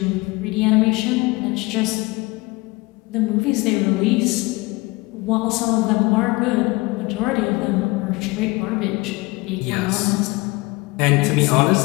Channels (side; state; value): right; quieter; 23.4 dB